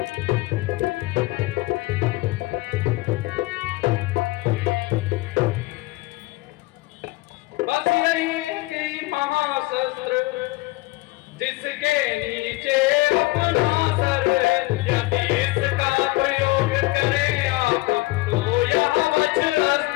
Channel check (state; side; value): quieter; right; 21.0 dB